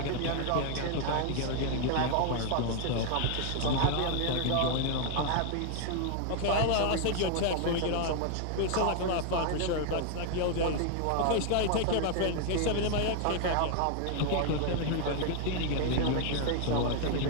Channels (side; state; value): both; different; correlation 0.00